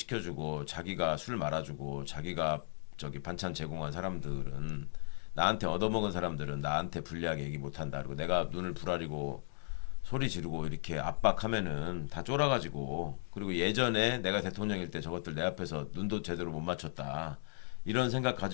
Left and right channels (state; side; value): silent; right; digital silence